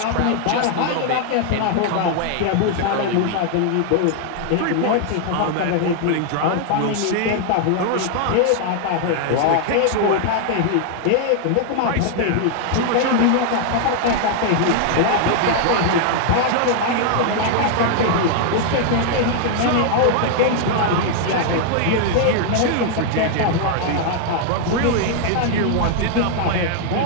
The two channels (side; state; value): both; different; correlation 0.00